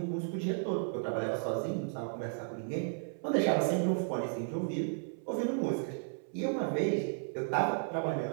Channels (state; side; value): silent; left; 55 dB below the other